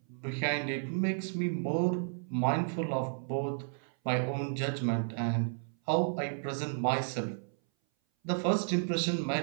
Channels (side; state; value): left; silent; 56 dB below the other